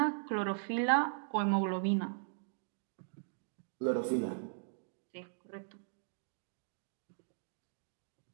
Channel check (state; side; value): silent; left; digital silence